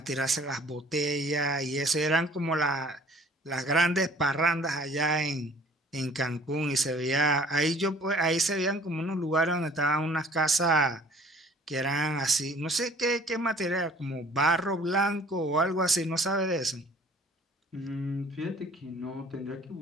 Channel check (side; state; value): both; normal; correlation 0.53